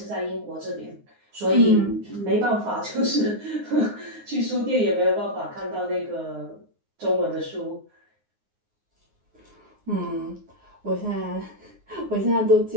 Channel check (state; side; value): late; left; 9.6 ms